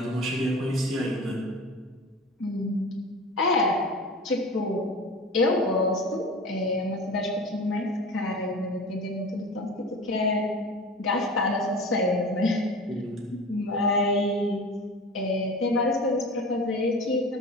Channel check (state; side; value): normal; both; correlation 0.34